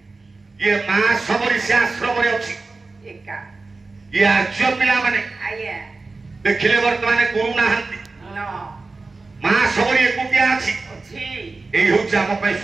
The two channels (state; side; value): quieter; left; 3.7 dB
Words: ये मां सबरी से आश्रम रे अछि एका ये आज्य पिला माने आगे देखिले वर्तमान गुरु नाहंती नो मां सबरी एकुटिया अछि अछि एई होछ हम पे